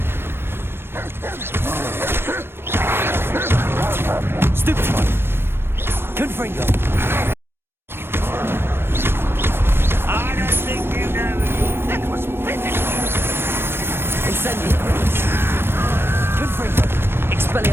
Stupefy. Confringo. I don't think you know. That was physical. Incendio. Confringo.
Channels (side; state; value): left; late; 0.11 ms